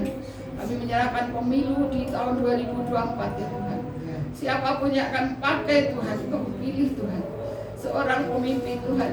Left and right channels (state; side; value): identical; both; correlation 1.00